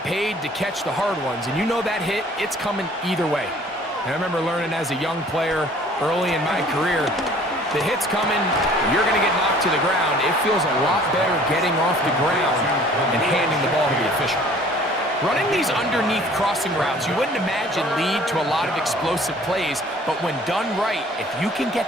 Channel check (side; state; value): both; normal; correlation 0.53